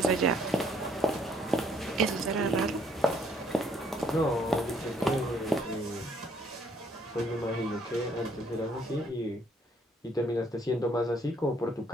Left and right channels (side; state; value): both; normal; correlation 0.65